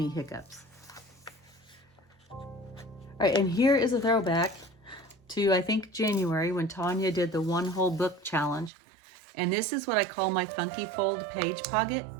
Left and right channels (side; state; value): left; drops out; at 8.7 s